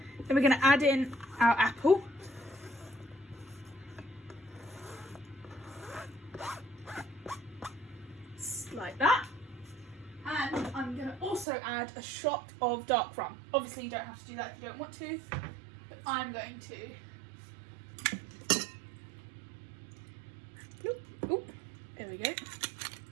Then we're going to add in our apple. Like that. And I'm going to also add a shot of dark rum. Obviously you don't have to do that if you don't want to, but I'm going to. Oop, there we go.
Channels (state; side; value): drops out; left; at 11.5 s